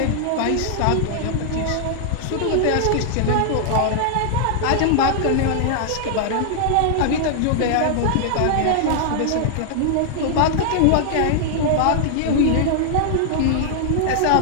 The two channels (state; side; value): different; both; correlation -0.01